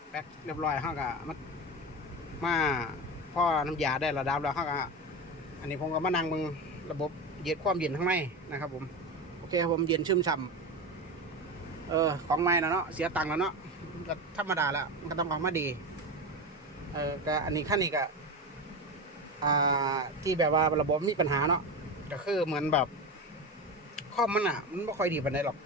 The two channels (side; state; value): both; normal; correlation 0.22